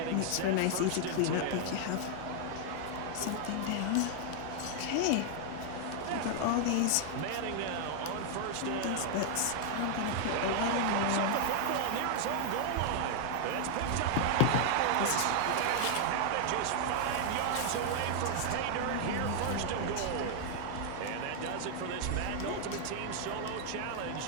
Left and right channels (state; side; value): different; both; correlation 0.00